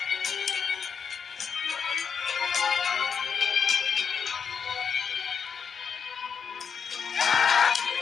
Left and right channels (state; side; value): quieter; right; 6.5 dB